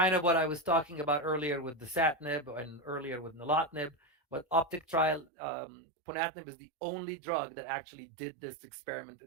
of what I was talking about earlier with the dasatinib and earlier with nilotinib, but OPTIC trial, ponatinib is the only drug that actually did this experiment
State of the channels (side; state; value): left; drops out; at 5.3 s